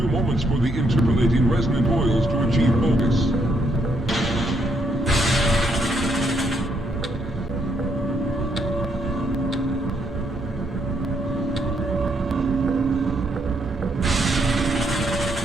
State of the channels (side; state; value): both; normal; correlation 0.74